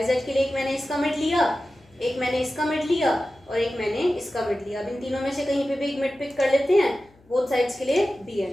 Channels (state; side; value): noise; left; hum, 30 dB below the sound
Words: Z के लिए एक मैंने इसका मिड लिया, एक मैंने इसका मिड लिया और एक मैंने इसका मिड लिया। अब इन तीनों में से कहीं पे भी एक मिड पिक कर लेते हैं, बोथ साइड्स के लिए बी